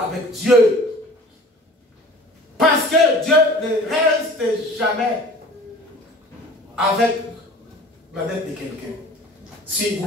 avec Dieu. Parce que Dieu ne reste jamais avec la dette de quelqu'un, si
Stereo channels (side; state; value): both; normal; correlation 0.45